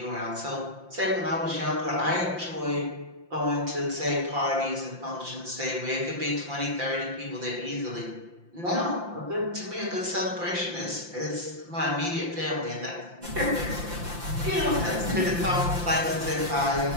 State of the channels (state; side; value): late; left; 5.8 ms